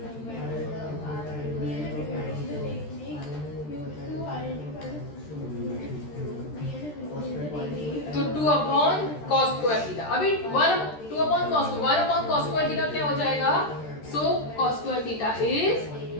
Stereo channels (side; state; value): right; late; 13 ms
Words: तो 2/cos स्क्वायर थीटा, अभी 2/cos स्क्वायर थीटा क्या हो जाएगा, so cos square theta is